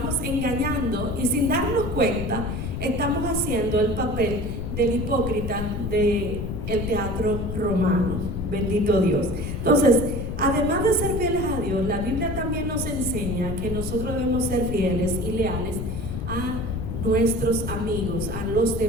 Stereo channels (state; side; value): noise; left; rumble, 4 dB below the sound